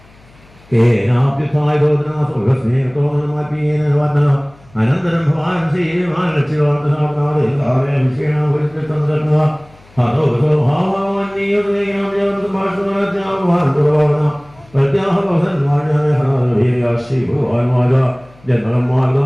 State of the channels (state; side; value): noise; left; hum, 27 dB below the sound